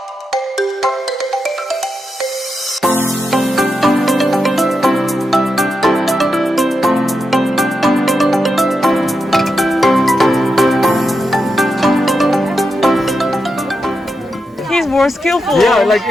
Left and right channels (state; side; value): normal; both; correlation 0.87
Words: He's more skillful. Yeah, like